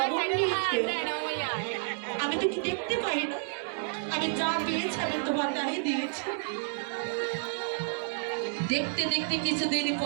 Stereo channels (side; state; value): left; silent; 58 dB below the other